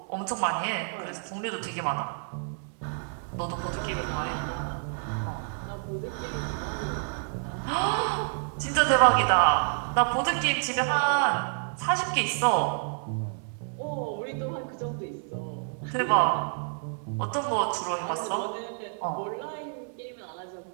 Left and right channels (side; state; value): left; silent; digital silence